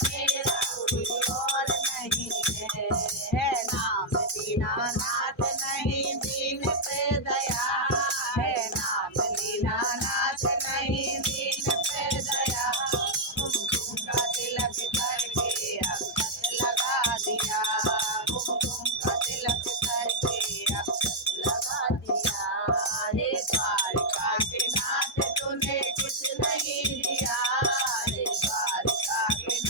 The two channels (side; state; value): both; normal; correlation -0.03